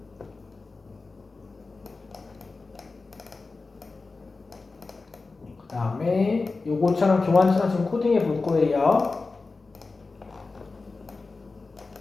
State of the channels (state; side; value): quieter; right; 3.9 dB